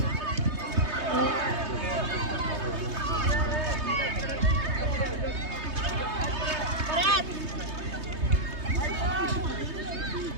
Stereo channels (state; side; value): late; left; 3.2 ms